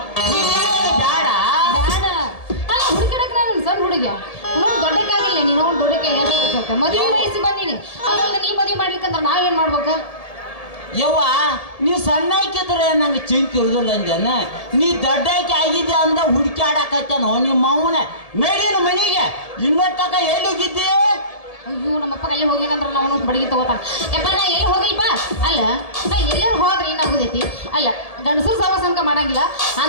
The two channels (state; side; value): late; right; 1.7 ms